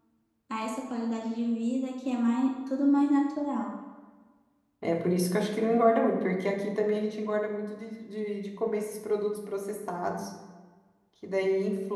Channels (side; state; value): both; identical; correlation 1.00